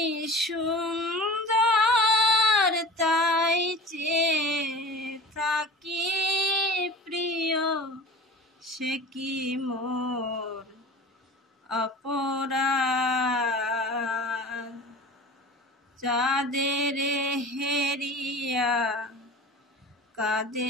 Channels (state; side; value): normal; both; correlation 0.37